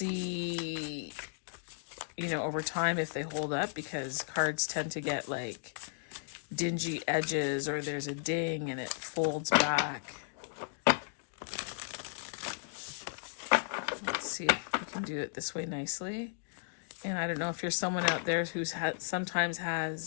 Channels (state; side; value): silent; right; digital silence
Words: you know, over time if they hold up, because cards tend to get like dingy edges, or there's a ding and it folds back. Let's see if we can do it this way nicely. And I don't know if you're someone out there who's sometimes